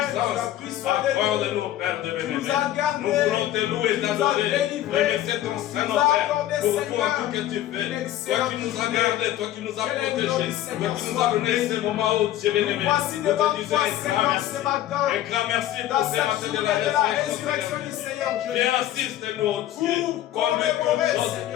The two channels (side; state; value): right; quieter; 13.2 dB